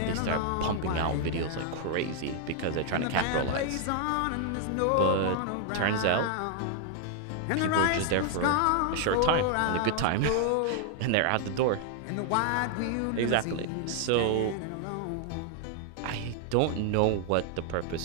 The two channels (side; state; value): both; different; correlation 0.00